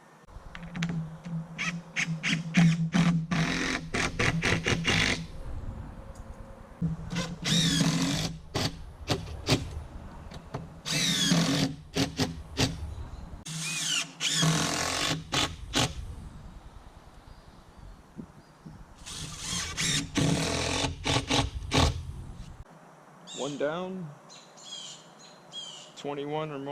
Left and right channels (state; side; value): identical; both; correlation 1.00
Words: One down, 21 or